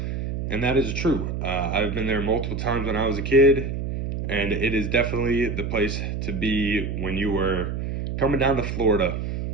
And that is true. I've been there multiple times when I was a kid, and it is definitely the place to be when you were coming down to Florida.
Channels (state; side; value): noise; right; hum, 3 dB below the sound